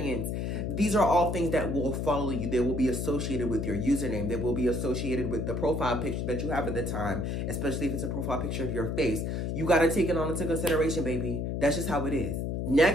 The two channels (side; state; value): left; noise; hum, 1 dB below the sound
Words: these are all things that will follow you. They will be associated with your username. They will be associated with the profile picture that you have at the time, especially if it's a profile picture of your face. You got to take it on into consideration, baby. That's just how it is.